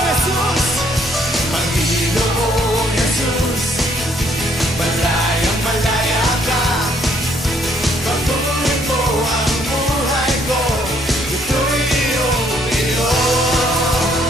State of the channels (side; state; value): both; normal; correlation 0.67